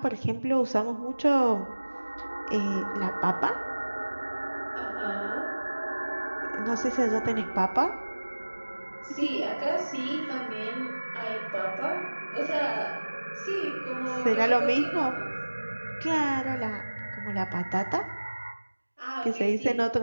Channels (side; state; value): both; inverted; correlation -1.00